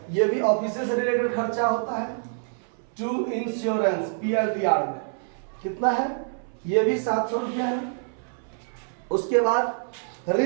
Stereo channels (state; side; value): silent; left; 61 dB below the other